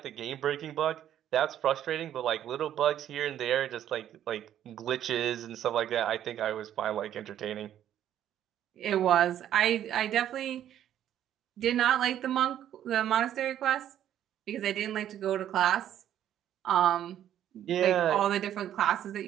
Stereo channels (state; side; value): quieter; left; 11.0 dB